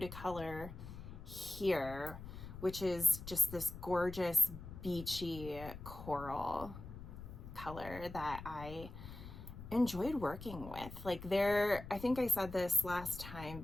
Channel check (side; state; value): left; noise; rumble, 12 dB below the sound